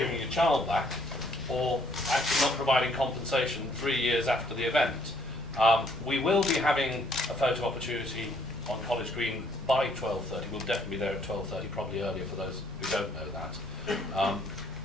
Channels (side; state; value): both; normal; correlation 0.66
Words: your child back or actually not providing compensation 3 years after the event. We will be having a photo opportunity on College Green by 12:30. We'll definitely be there at 12:30, probably earlier for those who don't know that.